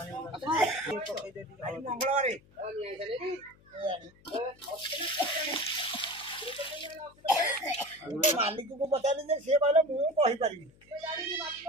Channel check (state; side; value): noise; left; hum, 28 dB below the sound